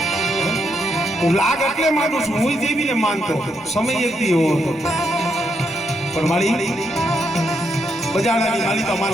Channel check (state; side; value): normal; both; correlation 0.79